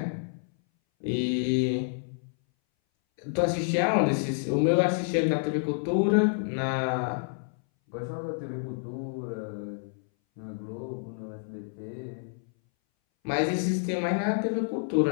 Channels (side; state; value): right; silent; 59 dB below the other